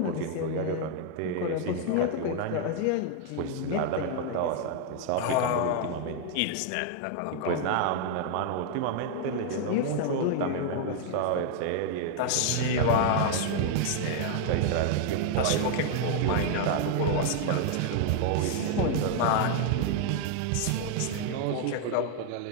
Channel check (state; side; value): different; both; correlation 0.00